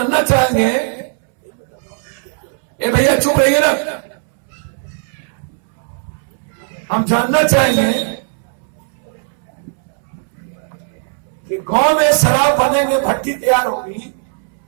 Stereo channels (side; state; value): left; silent; 68 dB below the other